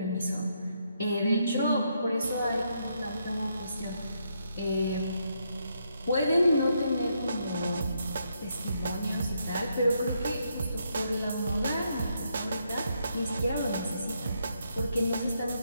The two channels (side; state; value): both; inverted; correlation -0.77